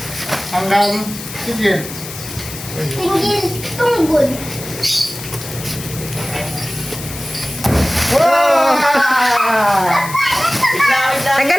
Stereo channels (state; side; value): noise; left; hiss, 11 dB below the sound